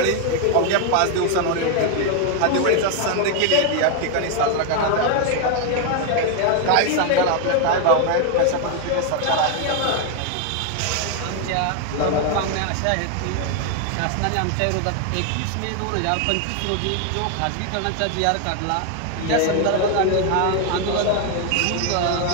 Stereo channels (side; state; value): both; different; correlation 0.00